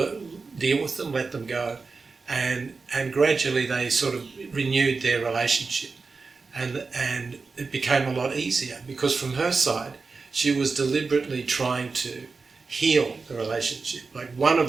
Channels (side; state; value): left; quieter; 4.4 dB